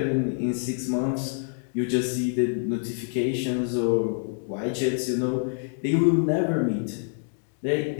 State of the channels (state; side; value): silent; right; digital silence